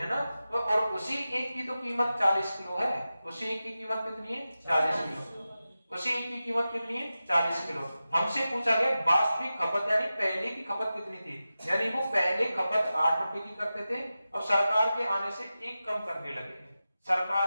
ना, तो और उसी एक की तो कीमत 40 किलो है, उसी एक की कीमत कितनी है, 40 किलो, उसी एक की कीमत कितनी है, 40 किलो। हमसे पूछा गया वास्तविक खपत यानी पहले की खपत कितनी थी, यानी वो पहले खपत 8 रुपए की करते थे, अब सरकार के आने से 1 कम करने लगे।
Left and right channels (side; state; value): both; inverted; correlation -0.94